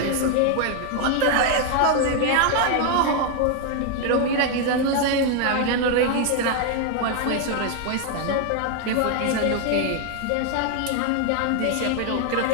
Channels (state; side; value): different; both; correlation 0.00